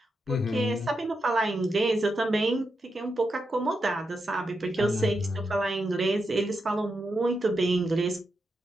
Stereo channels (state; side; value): normal; both; correlation 0.86